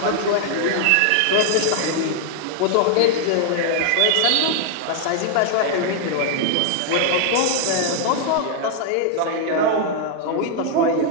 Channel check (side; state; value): both; different; correlation 0.00